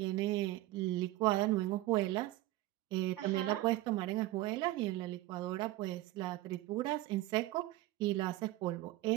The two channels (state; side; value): quieter; left; 16.9 dB